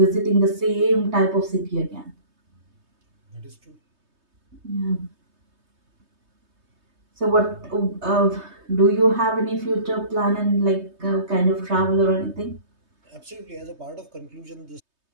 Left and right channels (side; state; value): left; late; 3.2 ms